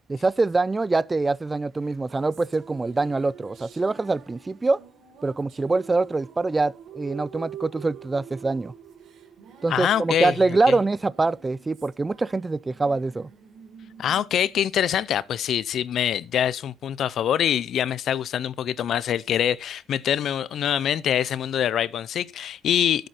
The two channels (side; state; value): both; normal; correlation 0.79